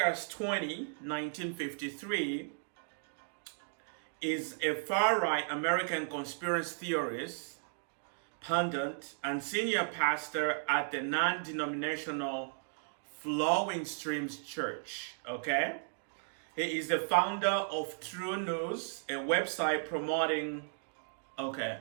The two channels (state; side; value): silent; left; digital silence